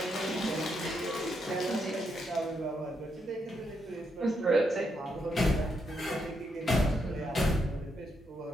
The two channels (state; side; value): normal; both; correlation 0.80